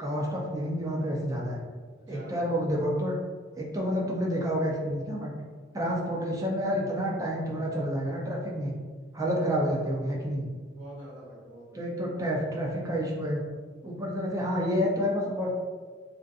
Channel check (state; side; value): normal; both; correlation 0.51